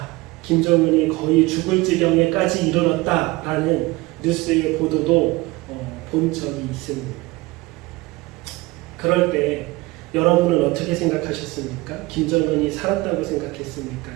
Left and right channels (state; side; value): quieter; left; 21.7 dB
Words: 김정은이 거의 죽을 지경에까지 이르렀다라는 뉴스의 보도도 본 적이 있습니다. 그럴 때 여러분은 어떻게 생각하셨습니까? 김정은이 살았다고 생각했습니까?